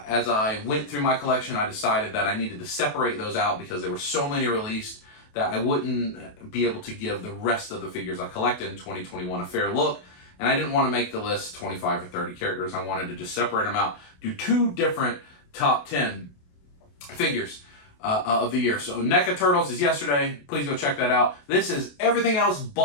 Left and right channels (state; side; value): late; right; 28 ms